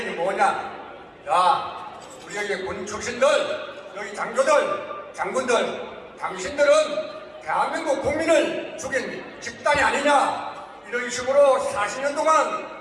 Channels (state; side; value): identical; both; correlation 1.00